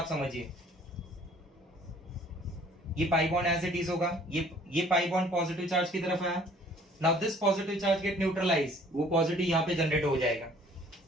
समझिए। ये pi bond as it is होगा, ये पाई बॉन्ड पॉजिटिव चार्ज की तरफ आया। Now this positive charge get neutralize, वो पॉजिटिव यहाँ पे जनरेट हो जाएगा,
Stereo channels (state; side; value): normal; both; correlation 0.55